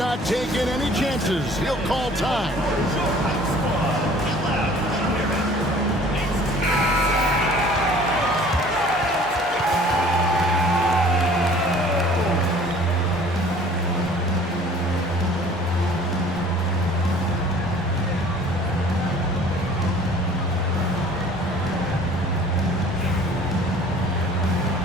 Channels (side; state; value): both; normal; correlation 0.50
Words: taking any chances. He'll call time.